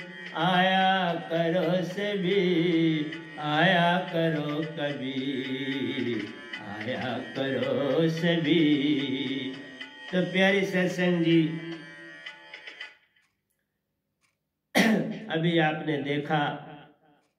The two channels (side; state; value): both; identical; correlation 1.00